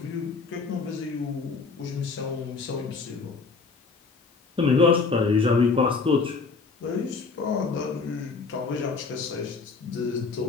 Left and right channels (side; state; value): right; quieter; 4.6 dB